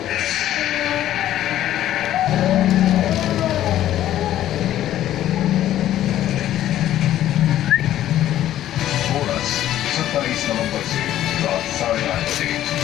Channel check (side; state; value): right; quieter; 12.6 dB